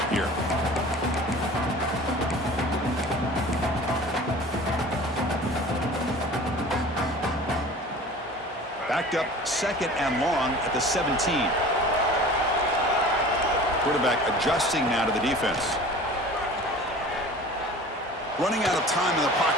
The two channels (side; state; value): both; normal; correlation 0.41